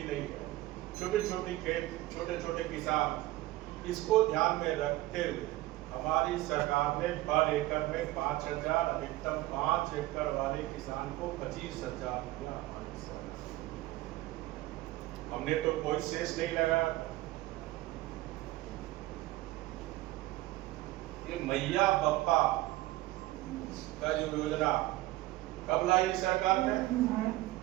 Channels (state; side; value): quieter; left; 17.6 dB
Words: नहीं है, छोटे छोटे खेत, छोटे छोटे किसान। इसको ध्यान में रखते हुए हमारी सरकार ने पर एकड़ में 5,000, अधिकतम 5 एकड़ वाले किसान को 25,000 रुपया। हमने तो कोई शेष नहीं लगा। ये मैया बप्पा का जो योजना कब लाई सरकार ने?